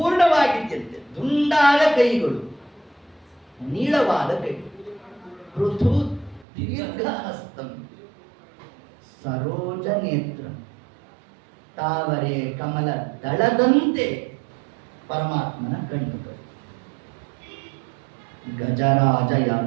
ದುಂಡಾದ ಕೈಗಳು, ನೀಳವಾದ ಕೈಗಳು. ಪೃಥು ದೀರ್ಘ ಹಸ್ತಂ ಸರೋಜ ನೇತ್ರ, ತಾವರೆ ಕಮಲ ದಳದಂತೆ ಪರಮಾತ್ಮನ ಕಣ್ಣುಗಳು. ಗಜರಾಜ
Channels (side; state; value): left; drops out; at 6.5 s